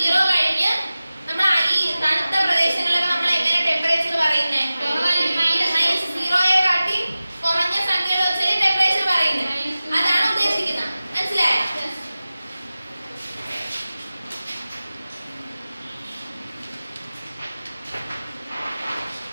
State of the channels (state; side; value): inverted; both; correlation -0.96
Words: കഴിഞ്ഞ് നമ്മൾ ഈ തണുത്ത പ്രദേശങ്ങളിലൊക്കെ നമ്മൾ എങ്ങനെ ടെമ്പറേച്ചർ പറയുന്നത്? 0യെക്കാട്ടി കുറഞ്ഞ സംഖ്യകൾ വെച്ചാൽ ടെമ്പറേച്ചർ പറയുന്നത്. അതാണ് ഉദ്ദേശിക്കുന്നത്. മനസ്സിലായോ?